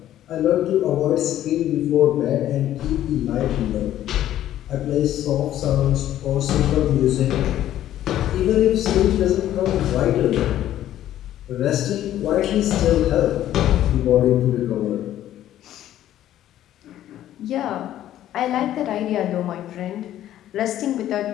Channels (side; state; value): right; quieter; 12.5 dB